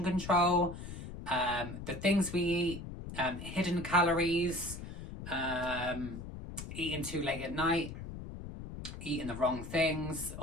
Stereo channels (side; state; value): left; noise; rumble, 10 dB below the sound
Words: control, the things we eat, hidden calories, eating too late at night, eating the wrong things,